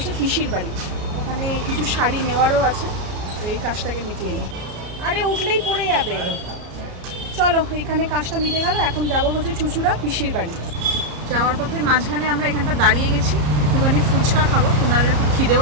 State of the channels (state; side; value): late; left; 34 ms